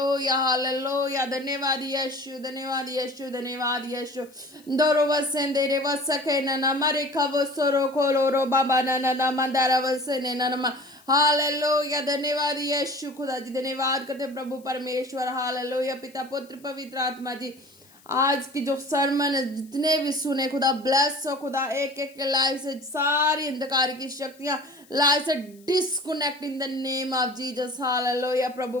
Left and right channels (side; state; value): left; noise; hiss, 28 dB below the sound